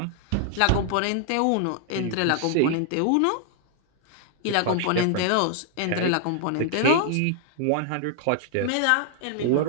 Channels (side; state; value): both; different; correlation -0.01